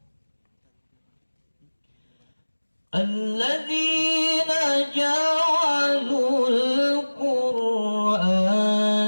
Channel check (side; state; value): both; inverted; correlation -1.00